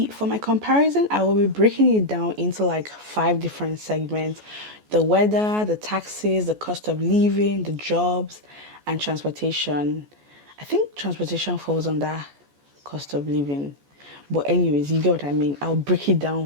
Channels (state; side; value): late; left; 14 ms